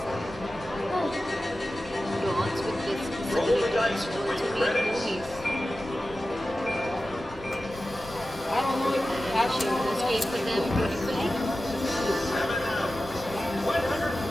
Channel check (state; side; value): normal; both; correlation 0.94